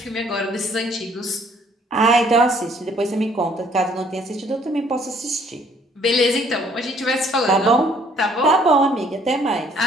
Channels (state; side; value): normal; both; correlation 0.61